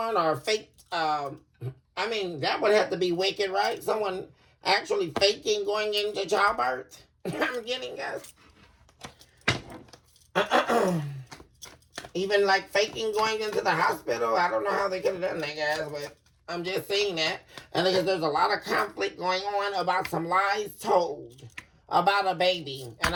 or fake. That would have to be wicked, right? Someone actually faking going into childbirth. I'm getting, guys. Even like faking going into the hospital. I don't know how they could have done that, guys, but I'm just saying that. And because there's a lot of conflict going on about some lies told about a baby. And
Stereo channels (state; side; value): identical; both; correlation 1.00